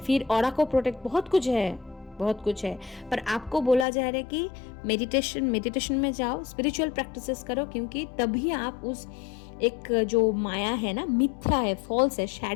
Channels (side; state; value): right; drops out; at 3.9 s